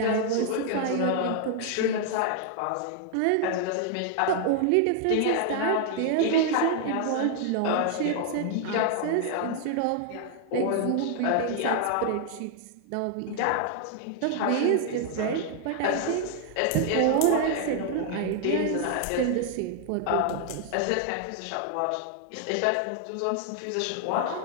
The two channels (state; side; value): different; both; correlation 0.00